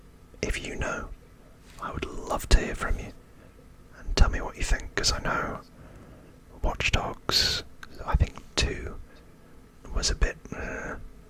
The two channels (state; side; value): identical; both; correlation 1.00